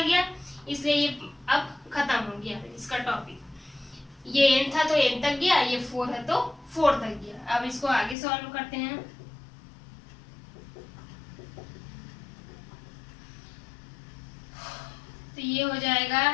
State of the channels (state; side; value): drops out; right; at 8.2 s